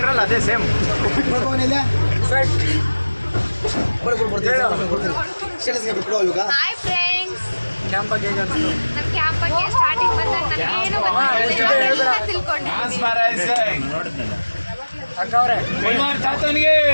ಅದೇ ಸೇಮ್. ಬರ್ತೀವಿ ಇವಾಗ ಹಾಯ್ ಫ್ರೆಂಡ್ಸ್. ಕ್ಯಾಂಪ್ ಬಗ್ಗೆ ಹೇಗೆ ಅನಿಸ್ತು? ನಮ್ಮ ಕ್ಯಾಂಪ್ ಬಗ್ಗೆ ಸ್ಟಾರ್ಟಿಂಗ್ ಬಂದಾಗ ನನಗೇನು ಗೊತ್ತಿಲ್ಲ, ತಿಳ್ಕೊಂಡಿದ್ದೀನಿ. ಅಕ್ಕ ಅವರೇ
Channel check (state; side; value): inverted; both; correlation -1.00